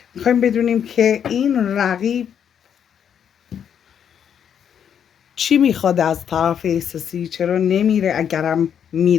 میخوایم بدونیم که این رقیب چی میخواد از طرف احساسی، چرا نمیره، اگرم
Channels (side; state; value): right; quieter; 8.4 dB